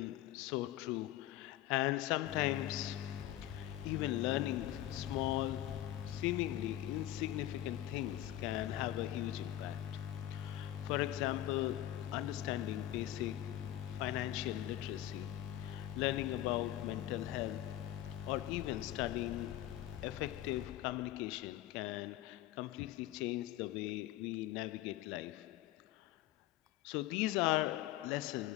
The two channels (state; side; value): quieter; right; 13.5 dB